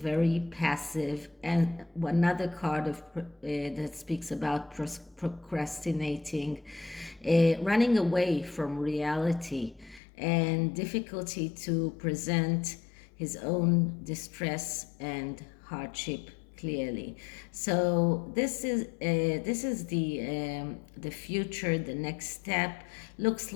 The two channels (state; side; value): drops out; right; at 10.0 s